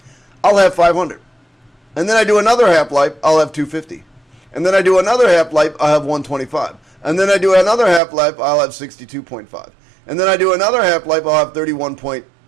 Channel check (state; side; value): drops out; left; at 8.0 s